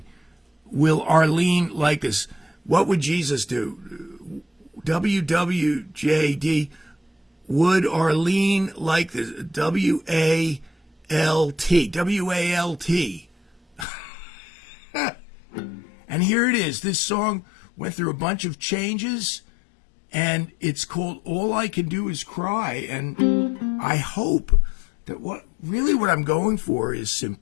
will Arlene like this? What would Jesus do? WWJD, would Arlene like this? WALT. WALT. And here it is. This song went through a bunch of changes, and it's called All I Can Do Is Cry. And I hope that what I'm going for is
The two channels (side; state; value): right; drops out; at 13.9 s